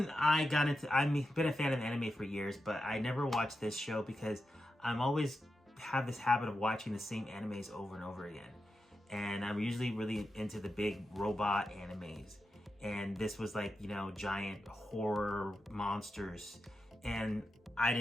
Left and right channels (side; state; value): both; normal; correlation 0.89